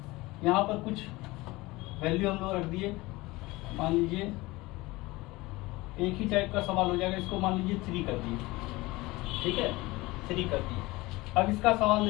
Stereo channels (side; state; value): right; quieter; 21.0 dB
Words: यहाँ पर कुछ वैल्यू हम लोग रख दिए, मान लीजिए एक ही टाइप का सवाल हो जाएगा, इसको मान लीजिए 3 कर दिए, ठीक है, 3 कर दिए। अब इसका सवाल